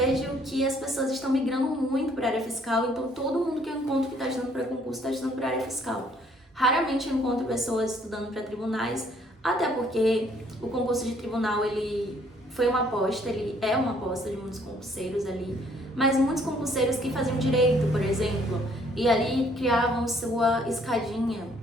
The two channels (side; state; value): both; normal; correlation 0.63